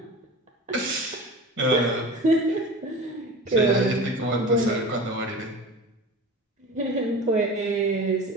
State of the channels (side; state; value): both; normal; correlation 0.35